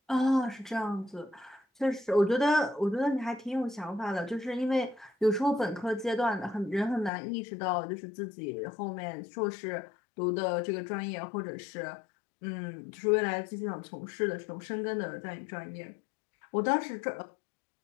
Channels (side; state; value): right; drops out; at 7.1 s